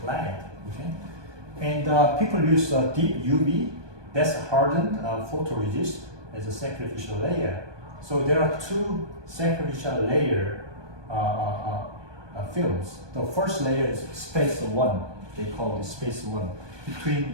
Okay, and people use deep UV, that's hardened photoresist, as a sacrificial layer. So there are two sacrificial layer films. The first layer is space 1. They call it space 1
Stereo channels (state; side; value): late; left; 1.2 ms